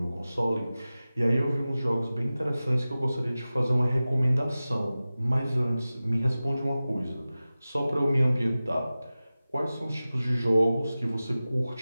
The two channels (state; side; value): inverted; both; correlation -0.96